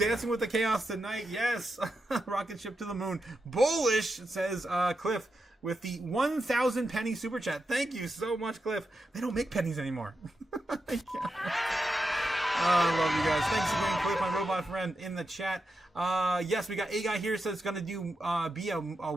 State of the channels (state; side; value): normal; both; correlation 0.87